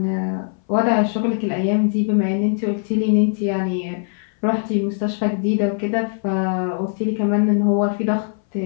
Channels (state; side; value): silent; right; 60 dB below the other